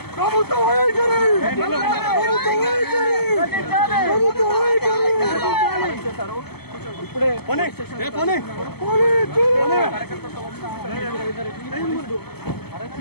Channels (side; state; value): right; late; 0.96 ms